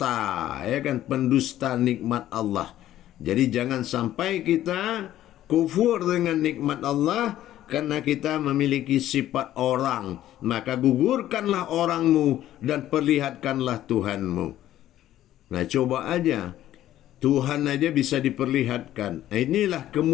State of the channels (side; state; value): right; quieter; 13.0 dB